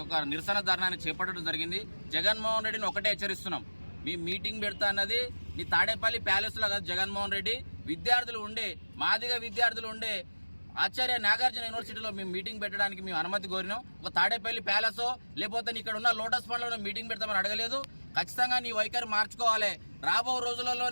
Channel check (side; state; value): both; inverted; correlation -1.00